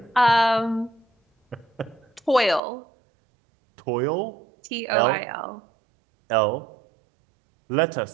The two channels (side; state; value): left; drops out; at 2.6 s